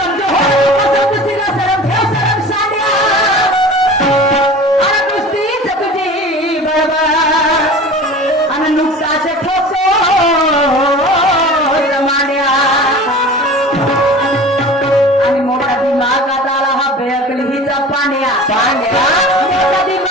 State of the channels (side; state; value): both; normal; correlation 0.39